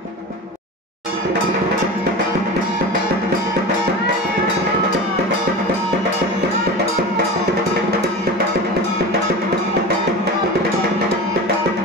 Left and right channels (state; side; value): normal; both; correlation 0.30